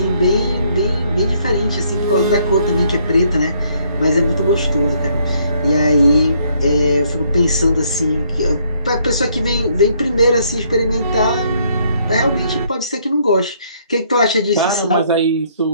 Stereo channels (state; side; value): inverted; both; correlation -0.68